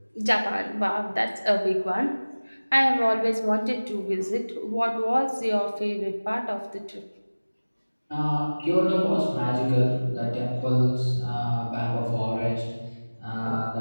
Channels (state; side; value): inverted; both; correlation -1.00